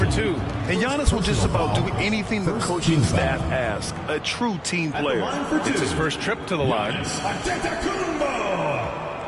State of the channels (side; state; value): both; identical; correlation 1.00